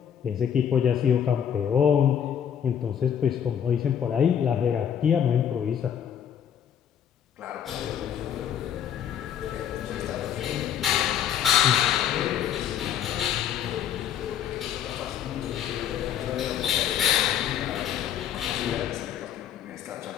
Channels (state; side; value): quieter; right; 9.1 dB